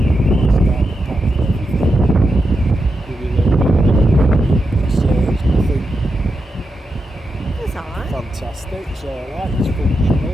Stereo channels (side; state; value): both; normal; correlation 0.87